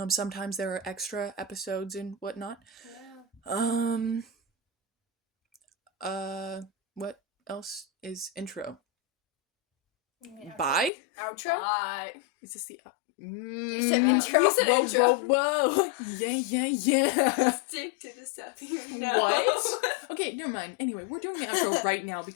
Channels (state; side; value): drops out; right; at 10.9 s